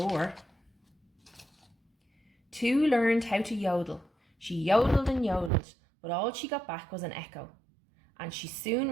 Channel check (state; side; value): drops out; left; at 5.5 s